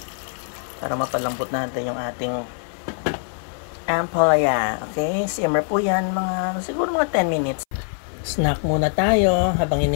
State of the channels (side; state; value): right; silent; 60 dB below the other